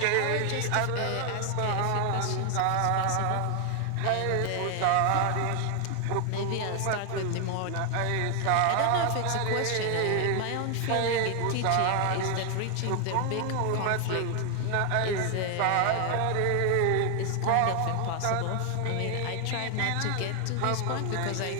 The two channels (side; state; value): both; different; correlation 0.00